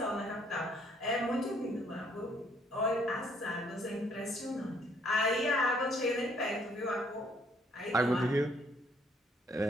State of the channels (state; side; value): normal; both; correlation 0.65